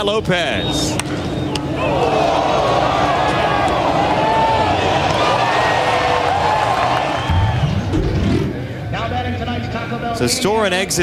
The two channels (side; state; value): both; identical; correlation 1.00